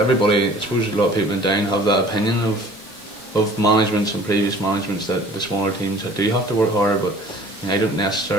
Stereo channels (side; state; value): both; normal; correlation 0.49